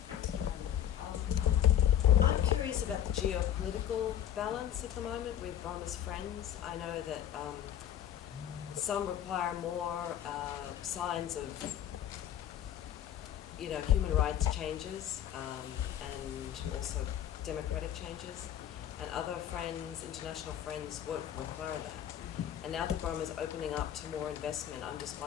I'm curious about the geopolitical balance at the moment with Burma's friends. I know that some require more signs of, human rights changes and also democratic changes. And other friends, international friends, won't require that. And now that Burma is opening up to more investment, I'm just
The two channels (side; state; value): right; quieter; 10.5 dB